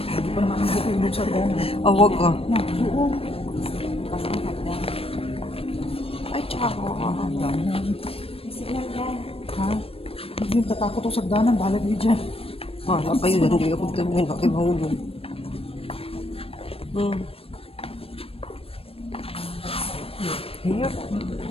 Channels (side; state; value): right; late; 0.28 ms